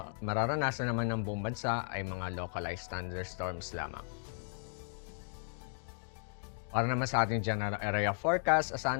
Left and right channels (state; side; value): silent; right; digital silence